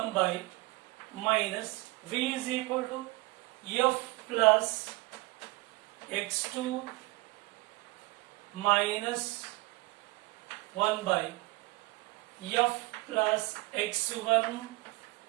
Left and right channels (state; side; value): quieter; left; 22.8 dB